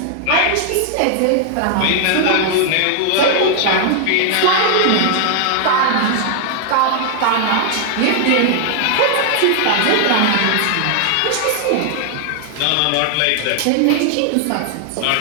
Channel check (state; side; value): different; both; correlation 0.00